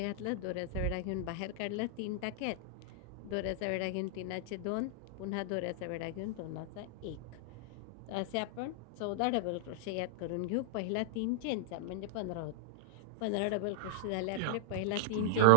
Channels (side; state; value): both; different; correlation 0.00